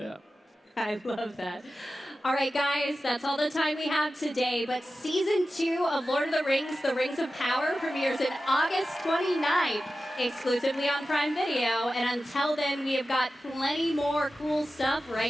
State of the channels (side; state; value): both; normal; correlation 0.94